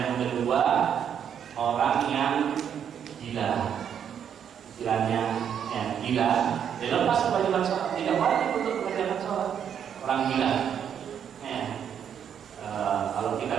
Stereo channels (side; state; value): left; quieter; 8.5 dB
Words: kedua, orang yang gila, istilahnya ya gila, dia lepas kewajiban sholat, tidak wajib untuk mengerjakan sholat. Orang gila, ya. Kalau kita